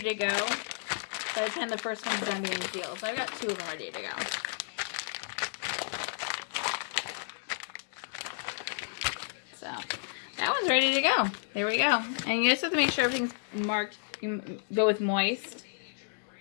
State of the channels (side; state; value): right; silent; digital silence